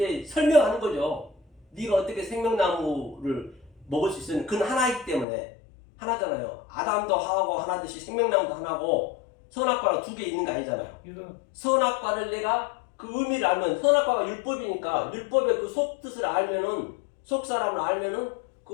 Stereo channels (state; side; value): drops out; right; at 5.2 s